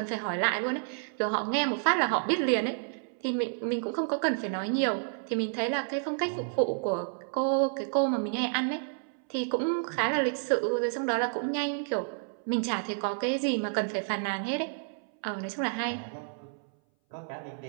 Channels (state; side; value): silent; left; 58 dB below the other